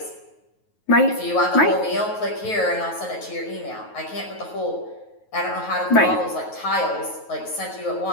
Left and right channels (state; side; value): late; right; 9.3 ms